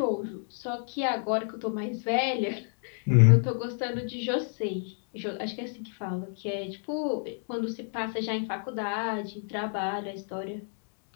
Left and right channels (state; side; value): silent; right; 58 dB below the other